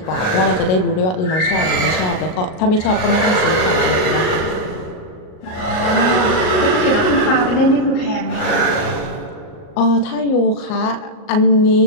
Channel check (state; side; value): late; right; 38 ms